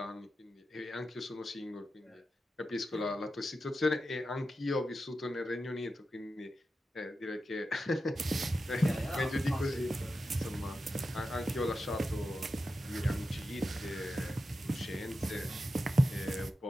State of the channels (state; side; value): normal; both; correlation 0.90